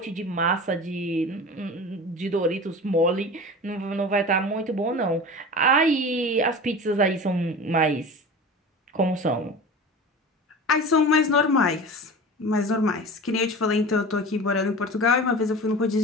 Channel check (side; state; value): both; normal; correlation 0.34